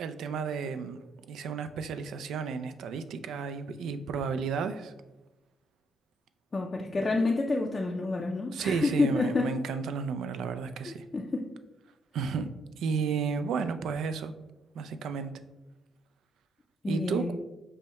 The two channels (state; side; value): normal; both; correlation 0.73